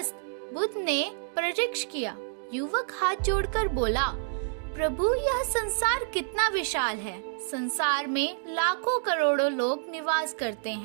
बुद्ध ने परीक्षा किया। युवक हाथ जोड़कर बोला, प्रभु, यह संसार कितना विशाल है। संसार में लाखों करोड़ों लोग निवास करते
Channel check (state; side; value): silent; left; digital silence